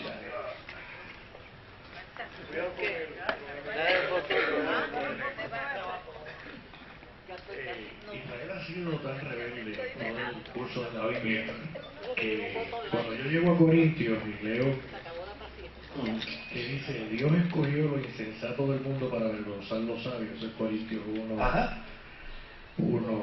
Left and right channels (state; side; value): identical; both; correlation 1.00